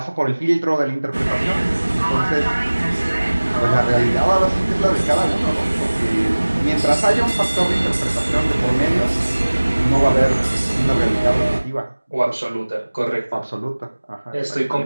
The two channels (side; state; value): both; inverted; correlation -1.00